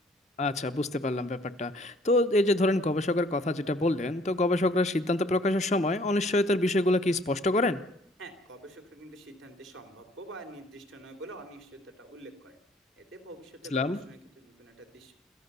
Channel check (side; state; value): both; normal; correlation 0.59